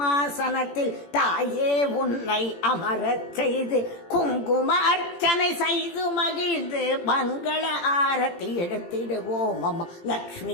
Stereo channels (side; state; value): right; late; 18 ms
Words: தாயே உன்னை அமரச் செய்து குங்கும அர்ச்சனை செய்து மகிழ்ந்து மங்கள ஆரத்தி எடுத்திடுவோம் அம்மா.